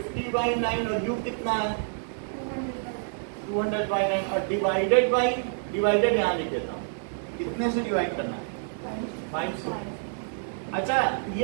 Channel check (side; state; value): left; silent; 59 dB below the other